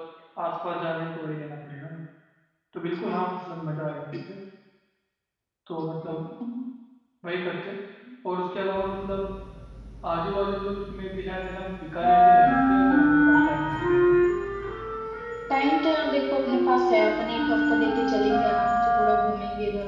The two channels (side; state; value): both; identical; correlation 1.00